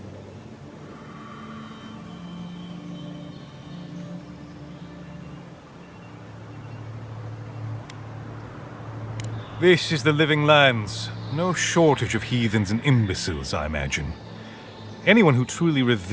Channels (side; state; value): both; identical; correlation 1.00